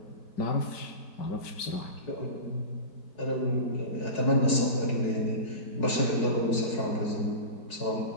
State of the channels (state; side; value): late; right; 4.7 ms